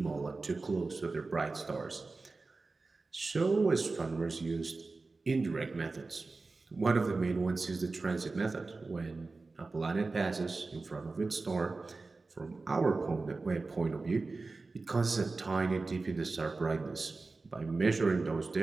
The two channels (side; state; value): left; quieter; 3.7 dB